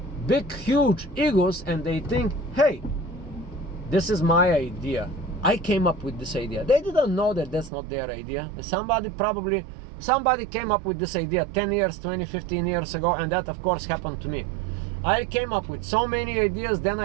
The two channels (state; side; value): drops out; left; at 7.7 s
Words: big, huge egos, and they think, hey, this is my idea. I came up with this idea. They didn't know that that's not their idea. Somebody came up with this idea 10 years, 20, 15 years ago, and that of course happened to me. I came up with so many ideas, then